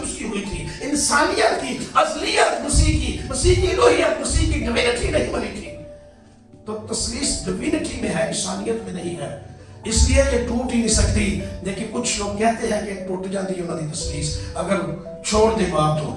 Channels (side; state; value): both; identical; correlation 1.00